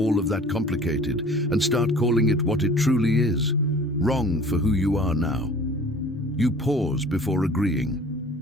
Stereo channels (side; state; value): both; normal; correlation 0.47